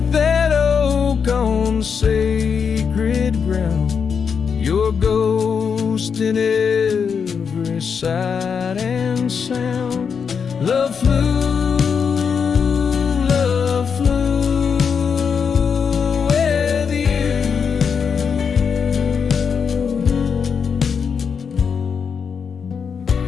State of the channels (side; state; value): right; quieter; 6.4 dB